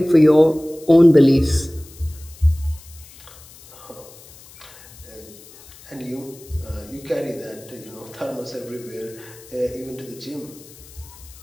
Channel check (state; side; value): noise; left; hiss, 21 dB below the sound